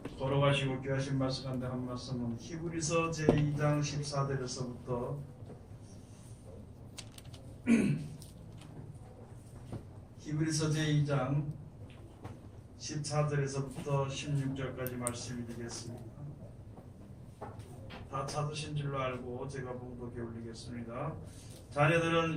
걸어가시고 귀하신 말씀 가운데 한 말씀은 히브리서 제2장 14절에서부터 히브리서 제2장 14절에서부터 16절까지 말씀이 되겠습니다. 다 찾으신 줄로 알고 제가 봉독해 올리겠습니다.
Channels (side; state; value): both; identical; correlation 1.00